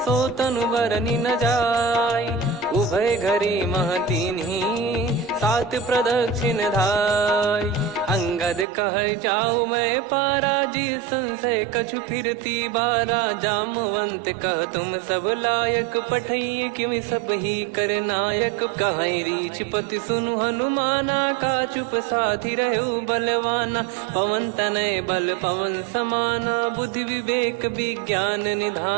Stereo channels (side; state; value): left; drops out; at 8.7 s